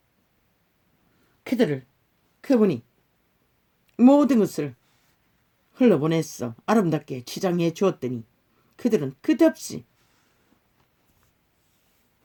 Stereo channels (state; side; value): identical; both; correlation 1.00